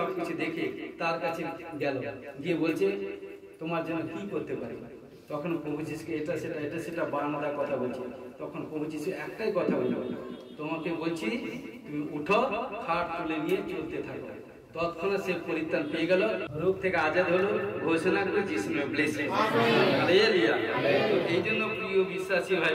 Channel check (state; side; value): identical; both; correlation 1.00